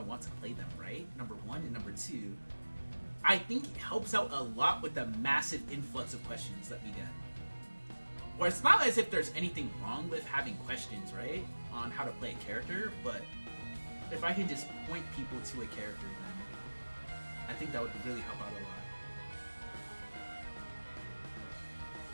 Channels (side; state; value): both; inverted; correlation -1.00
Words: want to play them, right? Number one, and number two, I think it helps out a lot with the massive influx of questions that we get. Or it's not as if there's anything wrong with having questions, right? On how to play a character, but if I can just point people to a character, then I think that would really help out a lot.